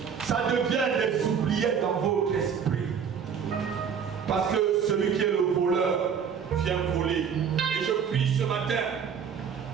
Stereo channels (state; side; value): quieter; left; 7.1 dB